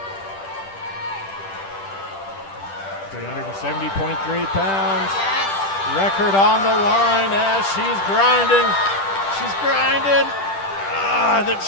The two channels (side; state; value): right; late; 10 ms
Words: $370.3 pounds. Yes. Record on the line as she's grinding. She's grinding.